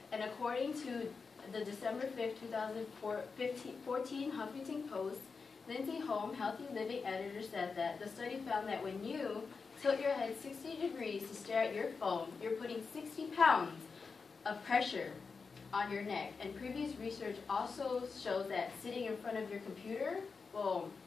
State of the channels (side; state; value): right; quieter; 4.9 dB